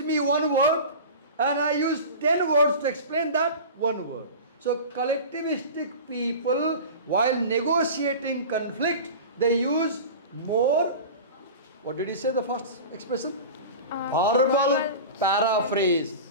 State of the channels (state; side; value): inverted; both; correlation -0.33